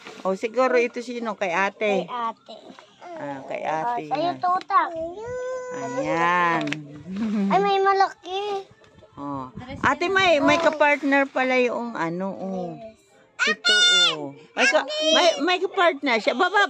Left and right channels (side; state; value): both; identical; correlation 1.00